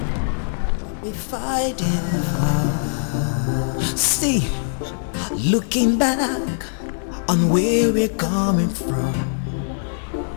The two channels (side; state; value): right; silent; 63 dB below the other